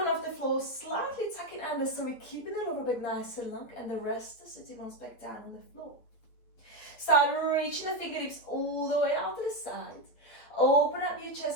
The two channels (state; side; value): late; right; 8.5 ms